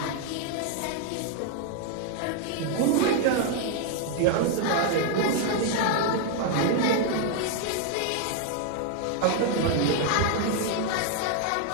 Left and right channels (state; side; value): different; both; correlation 0.00